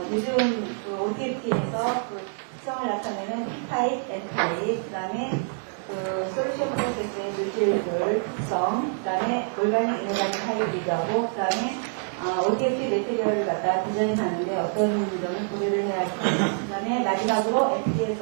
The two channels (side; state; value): left; silent; 61 dB below the other